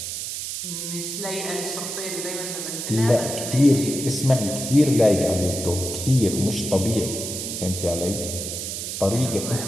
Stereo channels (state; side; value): noise; right; hiss, 5 dB below the sound